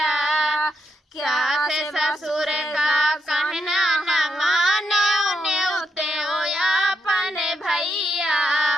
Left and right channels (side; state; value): both; normal; correlation 0.81